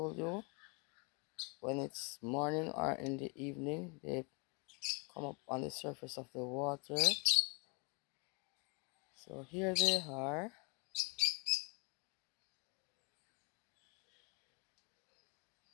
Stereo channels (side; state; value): right; quieter; 32.7 dB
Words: you, when it's morning or in the evening, they come up on the surface of the water. So here they are.